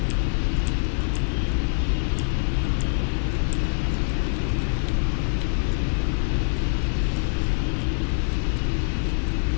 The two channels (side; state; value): right; silent; 58 dB below the other